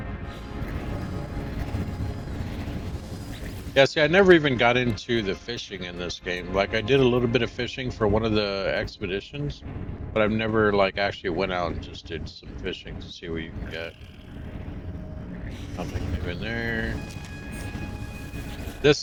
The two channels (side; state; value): both; identical; correlation 1.00